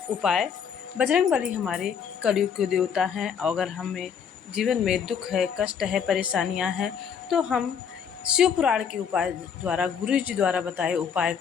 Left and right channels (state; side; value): quieter; right; 7.3 dB